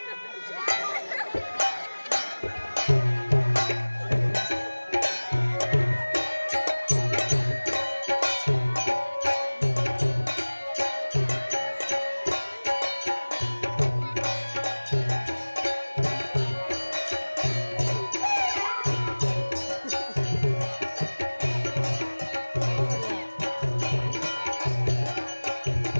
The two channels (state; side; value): inverted; both; correlation -1.00